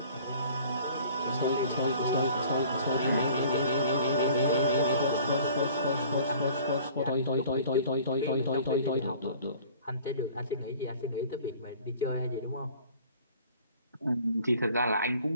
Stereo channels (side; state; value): both; inverted; correlation -0.49